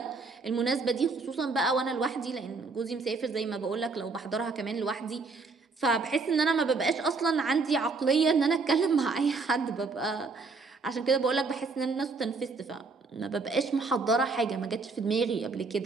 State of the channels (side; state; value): left; quieter; 4.1 dB